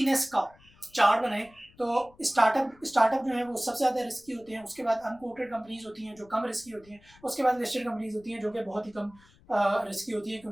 का चार्ट बनाएं तो स्टार्टअप जो है वो सबसे ज़्यादा रिस्की होते हैं। उसके बाद अनकोटेड कंपनीज होती हैं जो कम रिस्की होती हैं। उसके बाद लिस्टेड कंपनीज होती हैं जो कि बहुत ही कम रिस्की होती है,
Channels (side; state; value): left; noise; rumble, 27 dB below the sound